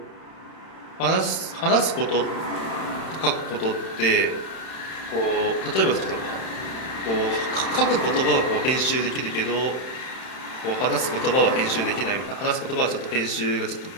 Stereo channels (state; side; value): late; right; 31 ms